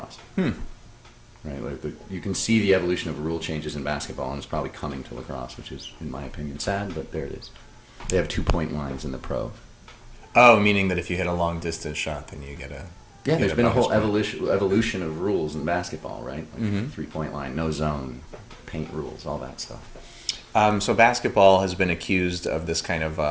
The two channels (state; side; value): identical; both; correlation 1.00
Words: Right? Like you can see the evolution of rule changes in basketball, and it's probably coming to lacrosse, which is, in my opinion, sad, but there it is. They have 2-point lines in the pro. Oh, meaning that if you hit a long-distance shot, then you get a... Yeah, there's been a whole evolution of rules in basketball, right? Like 3-point line, no zone, paint rules, all that stuff. So basketball has been accused of this kind of